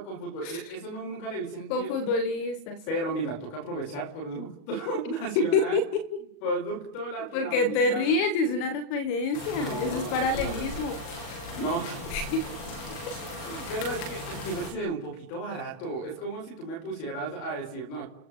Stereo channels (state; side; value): late; right; 37 ms